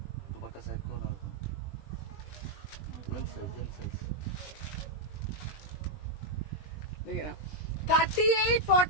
দেখে না 38,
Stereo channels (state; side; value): late; right; 20 ms